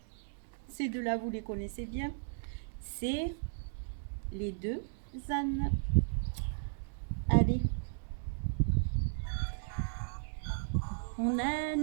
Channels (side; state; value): left; silent; digital silence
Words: ces deux-là, vous les connaissez bien. C'est les deux ânes. Allez. Mon